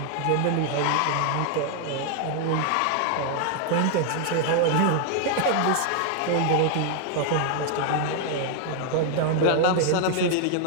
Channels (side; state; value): both; different; correlation 0.00